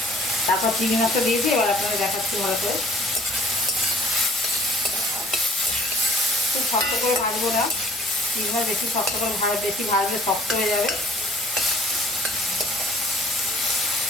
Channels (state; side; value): noise; left; hum, 29 dB below the sound